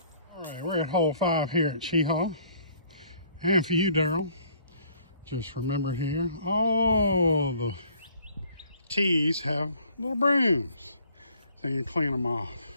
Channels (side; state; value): both; inverted; correlation -0.59